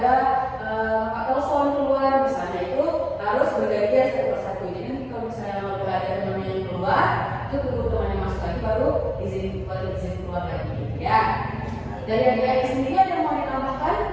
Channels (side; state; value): both; identical; correlation 1.00